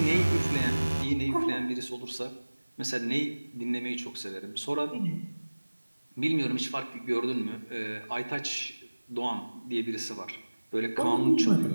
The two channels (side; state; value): both; inverted; correlation -1.00